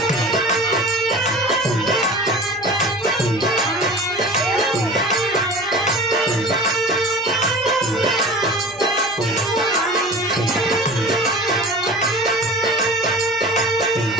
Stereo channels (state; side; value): noise; right; hum, 27 dB below the sound